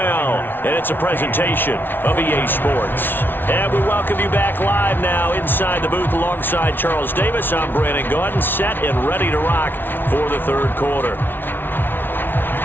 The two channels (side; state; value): right; late; 0.10 ms